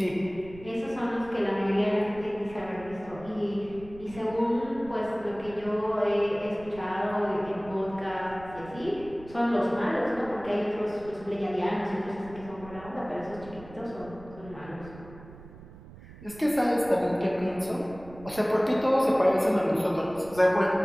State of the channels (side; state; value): right; noise; rumble, 18 dB below the sound